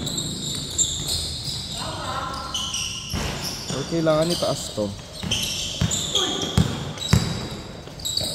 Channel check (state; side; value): identical; both; correlation 1.00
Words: Or kailangan itaas to.